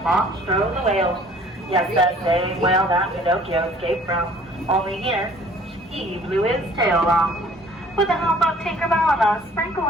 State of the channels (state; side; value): normal; both; correlation 0.54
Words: Monstro the whale. Yes, that same whale that Pinocchio escaped from. Only here, he blew his tail off. With the help of Tinkerbell and a sprinkle